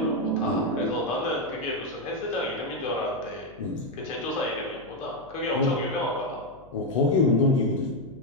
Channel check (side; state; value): left; noise; hum, 23 dB below the sound